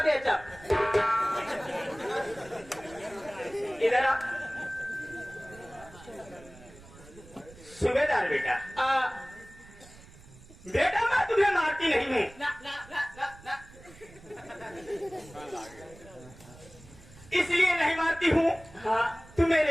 बेचा। इधर आ सुबेदार बेटा। बेटा मैं तुम्हें मारती नहीं हूँ। ना ना ना ना ना इसलिए नहीं मारती हूँ, हाँ तू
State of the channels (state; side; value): noise; right; rumble, 21 dB below the sound